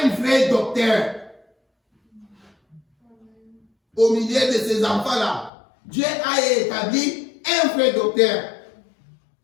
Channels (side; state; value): right; drops out; at 5.5 s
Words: vrai docteur. Au milieu de ces enfants-là, Dieu a établi un vrai docteur,